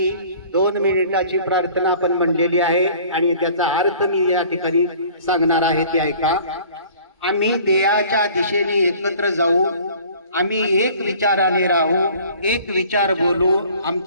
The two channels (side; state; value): both; inverted; correlation -0.50